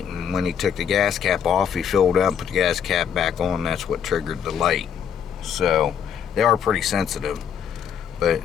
and when he took the gas cap off, he filled up and put the gas cap back on. That's what triggered the light. So they are pretty sensitive. But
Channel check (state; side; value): quieter; right; 8.1 dB